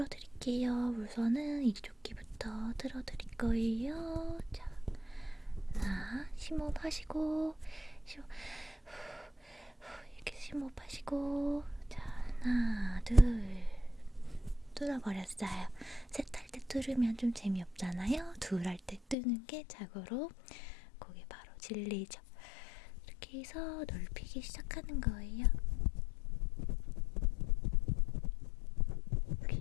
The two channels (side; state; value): right; drops out; at 19.2 s